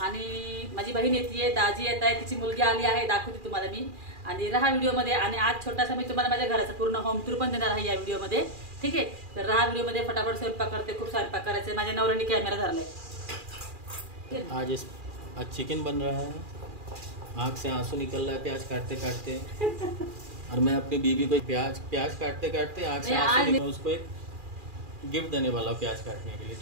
आणि माझी बहीण येते, दाजी येत आहे, तिची मुलगी आली आहे, दाखवते तुम्हाला मी. आणि राहा व्हिडिओमध्ये. आणि आज छोटासा मी तुम्हाला माझ्या घराचा पूर्ण होम टूर पण देणार आहे या व्हिडिओमध्ये. ठीक आहे, तर राहा व्हिडिओमध्ये. फटाफट स्वयंपाक करते, खूप स्वयंपाक करायचे. माझ्या नवऱ्याने कॅमेरा धरलाय. आज चिकन बन रहा है, आँख से आंसू निकल रहा है प्याज काटते काटते. और मैं अपनी बीवी को प्याज काटते काटते आँख से आंसू निकल, उसको एक गिफ्ट देने वाला हूं प्याज काटने के लिए.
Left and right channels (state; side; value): late; left; 2.4 ms